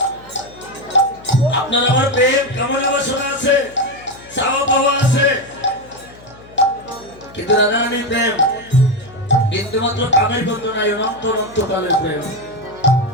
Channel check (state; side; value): noise; left; hum, 22 dB below the sound